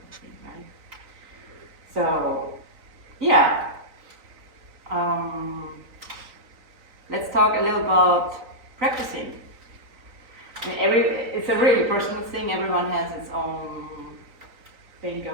thing, right? So, yeah. Let's talk a little about practicing. I mean, it's a really personal thing. Everyone has its own thing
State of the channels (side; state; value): left; late; 3.9 ms